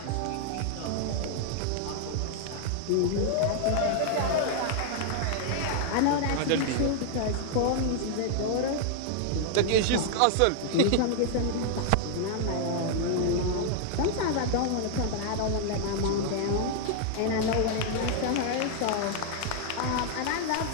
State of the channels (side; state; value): both; different; correlation 0.00